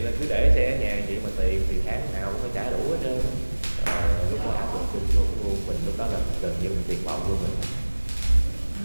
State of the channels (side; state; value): both; inverted; correlation -1.00